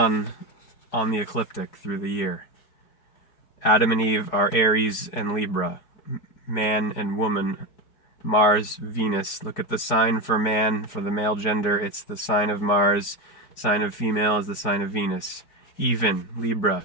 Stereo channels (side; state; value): right; late; 4.7 ms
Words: on the ecliptic through the year. Adam and Eve are Aries and Libra, man and woman, Mars, Venus. Look at the sign for man, for the male gender, it's the sign of Mars. Sign of female is the sign of Venus. Even, Libra.